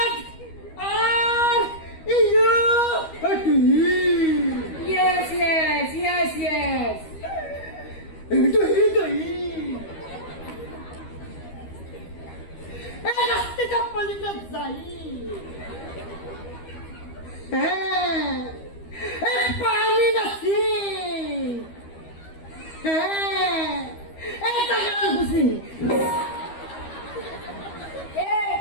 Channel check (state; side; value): late; right; 13 ms